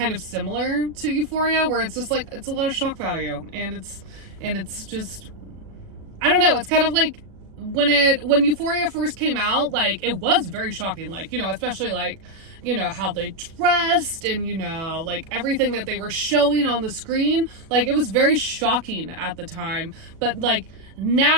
of similar to Euphoria, where it's just like, it's a lot of shock value, and it's just, I don't know. It's kind of like when Euphoria first came out, like, it was very shocking, like, you know, especially like, you know, how they dressed and, you know, like everything that they were showing on the screen, like, it was very shocking at the time. But like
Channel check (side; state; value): left; late; 37 ms